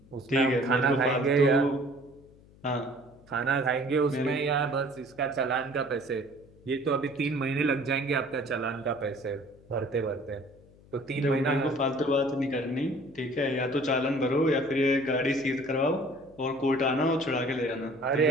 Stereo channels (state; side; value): noise; left; hum, 26 dB below the sound